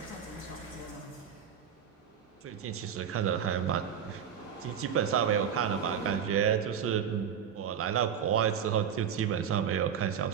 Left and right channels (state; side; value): quieter; left; 8.1 dB